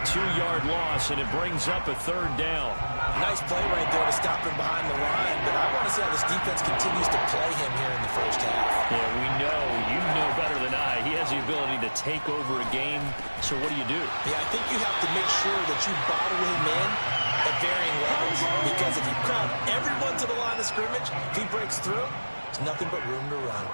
2-yard loss, and it brings up a third down. Nice play right there to stop him behind the line, but I want to see how this defense continues to play him here in the first half. Yeah, we know. You know better than I. He has the ability to take over a game, so what do you do? Yeah, I think you have to make sure that you bottle him in at varying levels, because if you crowd everyone to the line of scrimmage, if he breaks through, there's nothing but room to run.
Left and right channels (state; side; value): inverted; both; correlation -1.00